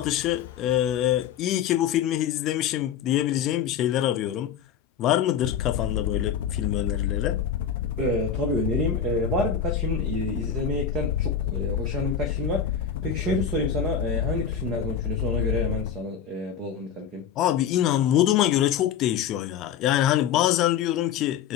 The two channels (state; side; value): quieter; right; 8.0 dB